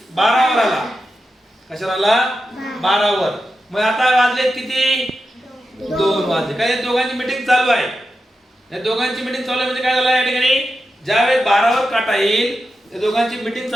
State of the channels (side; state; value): both; normal; correlation 0.90